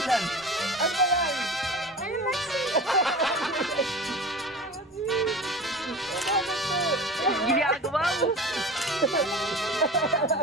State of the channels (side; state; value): both; normal; correlation 0.35